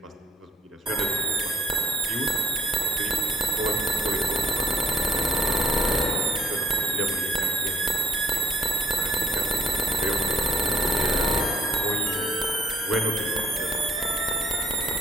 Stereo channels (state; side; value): normal; both; correlation 0.60